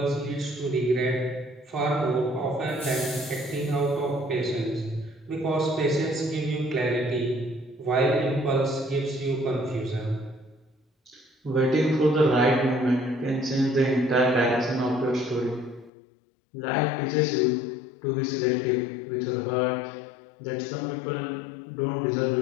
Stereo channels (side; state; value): right; drops out; at 15.9 s